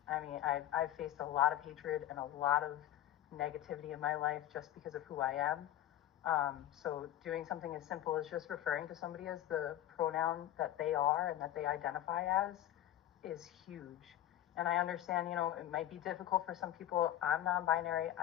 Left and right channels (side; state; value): right; quieter; 12.6 dB